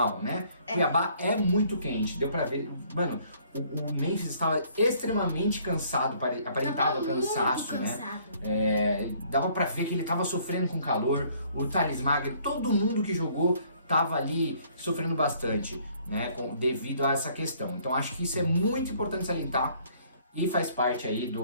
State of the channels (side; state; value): both; inverted; correlation -0.61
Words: né? Cuiabá é muito quente, deu pra ver. Mano, o Memphis estava extremamente cansado, aparentava cansaço, né? Dava pra ver que ele tava sofrendo com calor. O Thales Magno, todo mundo que jogou tava ali sofrendo bastante, né? Devido a essa questão. Então acho que isso é muito importante salientar. E faz parte aí